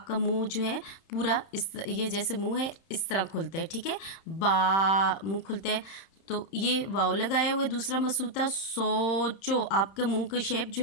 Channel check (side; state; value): right; late; 31 ms